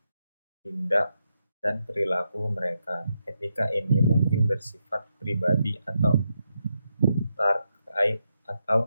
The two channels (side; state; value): both; inverted; correlation -0.84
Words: tindak dan perilaku mereka. Etika ini mungkin bersifat pribadi atau